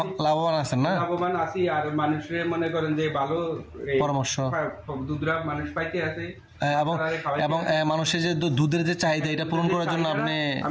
লাভবান আছেন না? লাভবান আছি, আর মানুষের মনে করেন যে ভালো পরামর্শ দুধরা মানুষ পাইতে আছে, এবং মানুষের যে দুধের যে চাহিদা এটা পূরণ করার জন্য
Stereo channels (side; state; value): both; identical; correlation 1.00